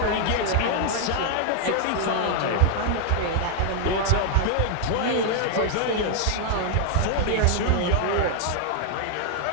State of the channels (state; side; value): different; both; correlation 0.00